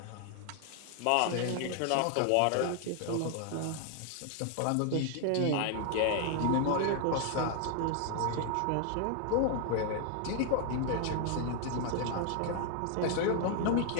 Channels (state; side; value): different; both; correlation 0.00